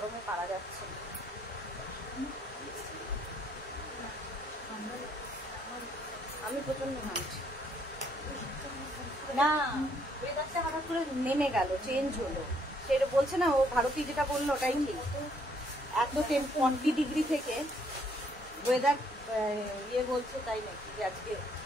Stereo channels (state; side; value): normal; both; correlation 0.68